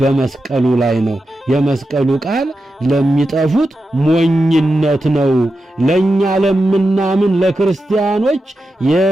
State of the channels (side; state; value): both; normal; correlation 0.90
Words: ላይ ነው። የመስቀሉ ቃል ለሚጠፉት ሞኝነት ነው፣ ለኛ ለምናምን ለክርስቲያኖች